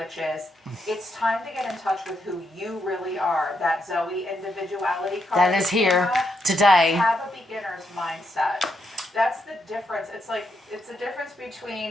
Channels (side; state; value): both; normal; correlation 0.80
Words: is, it's time to get in touch with who you really are. That Zoe individuality card. That is here today. Have a beginner's mindset. That's the difference. It's like, it's the difference